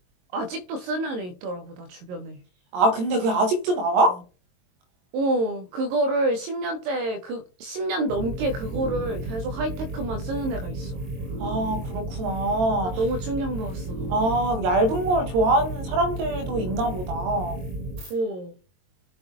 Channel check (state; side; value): late; left; 22 ms